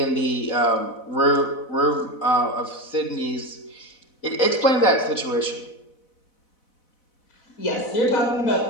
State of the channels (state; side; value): late; right; 4.0 ms